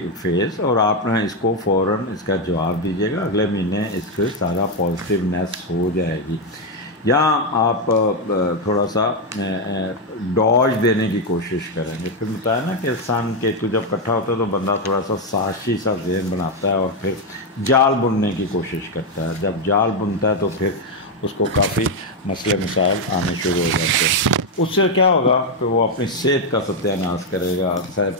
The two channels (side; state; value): both; normal; correlation 0.04